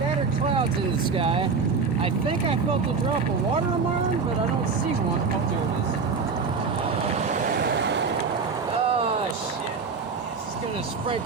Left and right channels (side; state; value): left; quieter; 5.1 dB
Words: clouds in the sky. I think I felt a drop of water on my arm, but I don't see one. Oh, there it is. Oh shit. It's just gonna